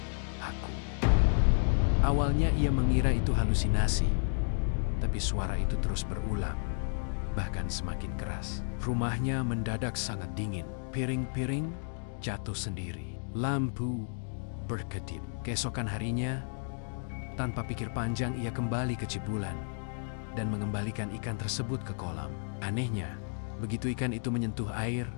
aku." Awalnya ia mengira itu halusinasi, tapi suara itu terus berulang, bahkan semakin keras. Rumahnya mendadak sangat dingin. Piring-piring jatuh sendiri. Lampu berkedip. Keesokan harinya, tanpa pikir panjang ia kembali ke Cibulan dan mengembalikan ikan tersebut ke kolam. Anehnya, begitu ikan itu menyentuh air,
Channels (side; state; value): right; silent; digital silence